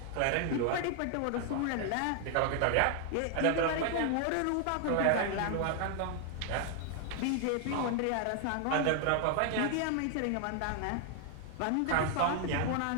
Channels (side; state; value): both; different; correlation 0.00